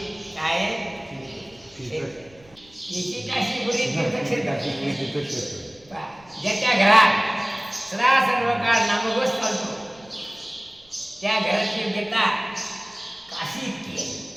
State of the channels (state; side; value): noise; right; rumble, 28 dB below the sound